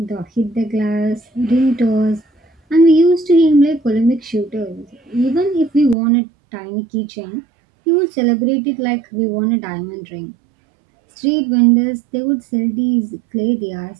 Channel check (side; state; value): left; drops out; at 6.0 s